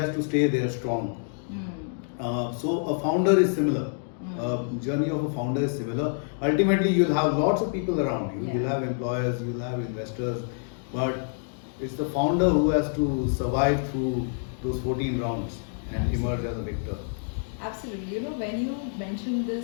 to stay there strong. So a founder is similar. Journey of a founder is similar. Ultimately, you'll have lots of people around you. You'll have employers, you'll have investors, but it's the founder who has to survive through those 14 rounds and emerge as a victor. Absolutely. When you mentioned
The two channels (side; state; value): right; silent; digital silence